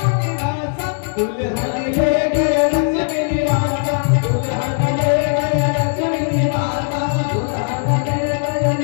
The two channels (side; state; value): right; silent; digital silence